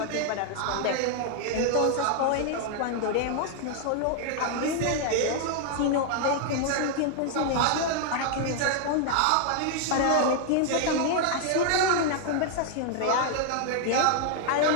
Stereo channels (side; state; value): both; different; correlation 0.00